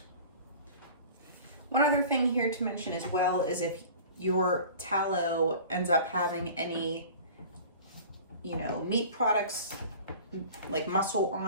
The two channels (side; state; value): both; inverted; correlation -0.42